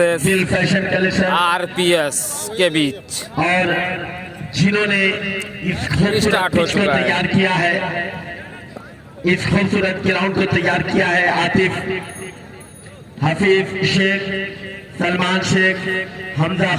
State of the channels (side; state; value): both; identical; correlation 1.00